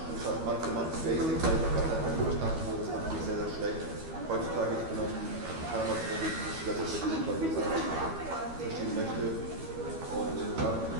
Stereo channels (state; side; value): late; left; 12 ms